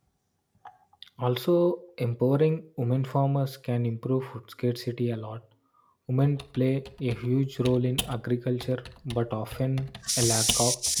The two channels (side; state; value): both; identical; correlation 1.00